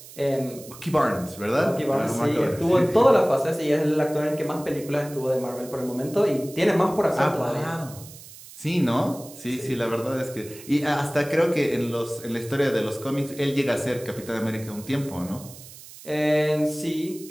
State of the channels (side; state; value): right; noise; hiss, 18 dB below the sound